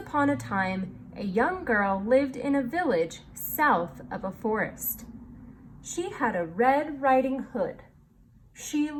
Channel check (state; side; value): identical; both; correlation 1.00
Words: a time, a young girl lived in a village south of a forest. She had a red riding hood. She